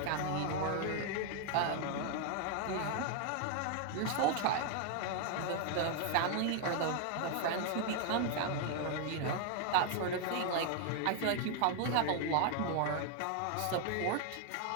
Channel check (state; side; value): different; both; correlation 0.00